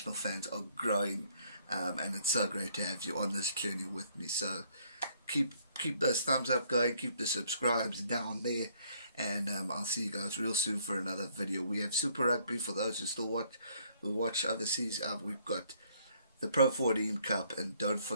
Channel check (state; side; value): inverted; both; correlation -0.65